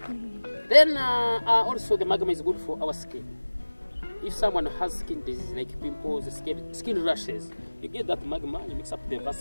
Then also the magma is good for our skin. If someone has skin disease like pimples, skin rashes, you get that magma, you mix up the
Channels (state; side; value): inverted; both; correlation -1.00